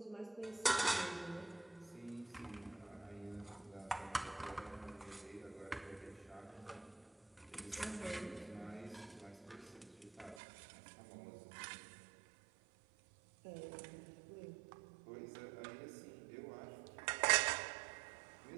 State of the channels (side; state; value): left; drops out; at 10.4 s